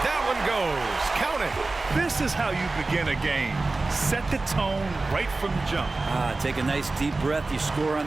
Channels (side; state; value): left; quieter; 3.4 dB